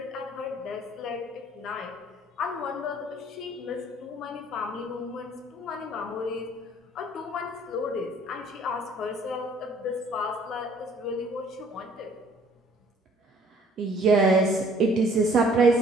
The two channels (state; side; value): normal; both; correlation 0.57